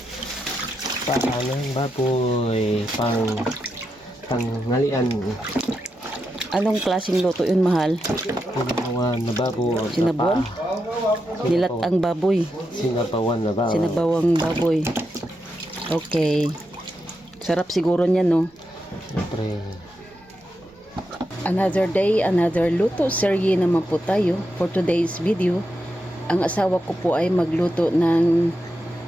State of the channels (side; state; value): both; normal; correlation 0.85